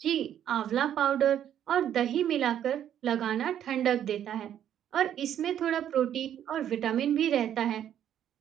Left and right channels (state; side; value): quieter; left; 10.2 dB